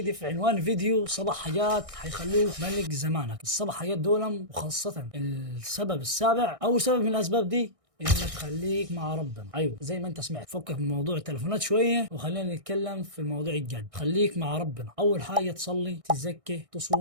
في عنوان الفيديو، 7 حاجات حيخلوك ملك زمانك. ال7 حاجات دول، وخاصة السبب السابع، أول سبب من الأسباب دي انك خليك مع ربنا. ايوه زي ما انت سمعت، فكك من موضوع التليفونات شويه وخلينا نتكلم في الموضوع الجد. خليك مع ربنا. اول حاجه تصلي، تزكي،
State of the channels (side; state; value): left; late; 1.6 ms